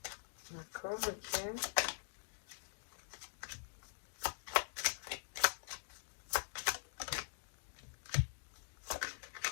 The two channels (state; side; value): silent; right; digital silence